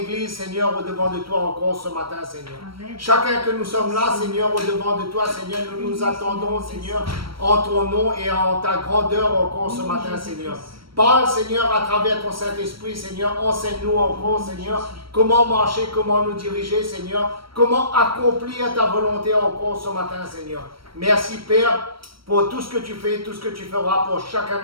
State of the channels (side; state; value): left; late; 0.75 ms